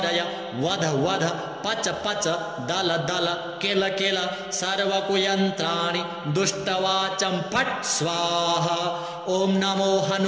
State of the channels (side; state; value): both; identical; correlation 1.00